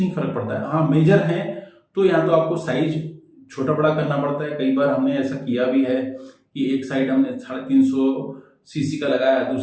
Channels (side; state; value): both; identical; correlation 1.00